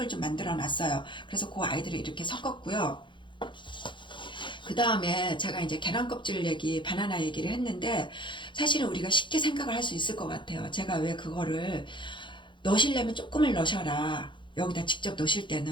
좀 만들어 놨어요. 그래서 그 아이들을 이렇게 섞었고요. 그 다음에 제가 이제 계란 껍질 바나나 얘기를 했는데 사실은 우리가 쉽게 생각을 할 수 있을 것 같아요. 제가 왜 그거를 넣으시려면 조금을 넣으셔라. 여기다 직접 넣으실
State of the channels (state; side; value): late; right; 0.23 ms